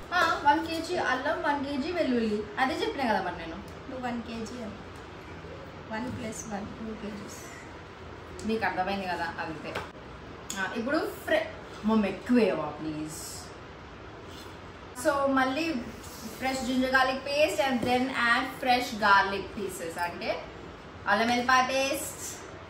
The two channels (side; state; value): both; identical; correlation 1.00